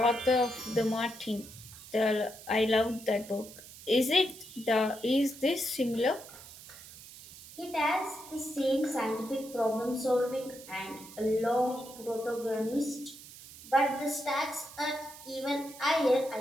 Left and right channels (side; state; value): right; noise; hiss, 17 dB below the sound